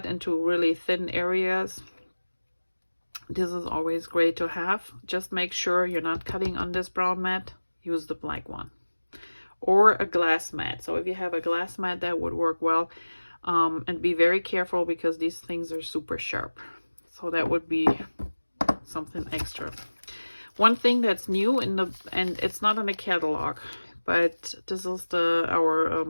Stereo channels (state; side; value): inverted; both; correlation -1.00